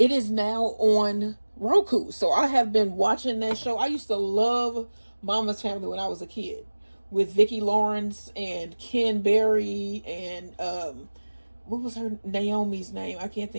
is now on Roku. So I have been watching that show. I used to love Mama's Family when I was a kid, with Vicki Lawrence and Ken Berry and what was her Naomi's name? I can't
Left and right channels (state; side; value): inverted; both; correlation -1.00